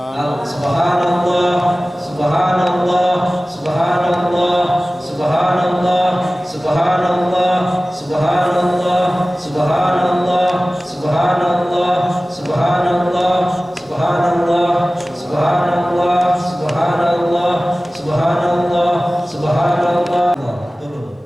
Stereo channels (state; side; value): normal; both; correlation 0.97